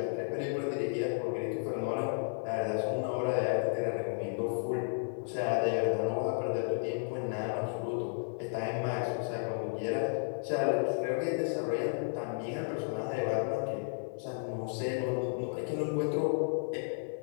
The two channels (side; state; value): right; silent; digital silence